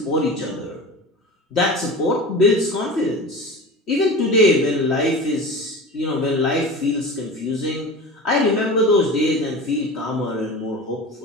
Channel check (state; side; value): normal; both; correlation 0.32